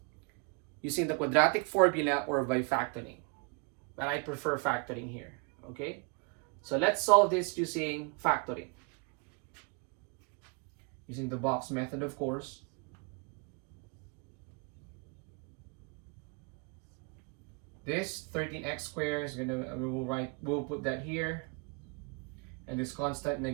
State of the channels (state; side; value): quieter; left; 33.0 dB